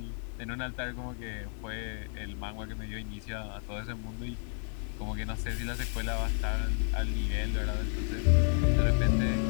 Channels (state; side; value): silent; right; 57 dB below the other